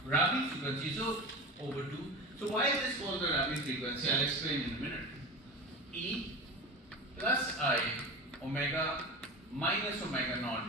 Rabi frequency, so over 2. So why is this called the Rabi frequency? I'll explain in a minute. E plus I omega minus omega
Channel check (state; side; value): normal; both; correlation 0.28